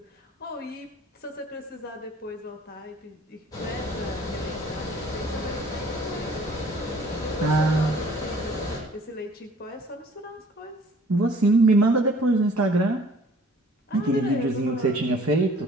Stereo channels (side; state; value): both; normal; correlation 0.53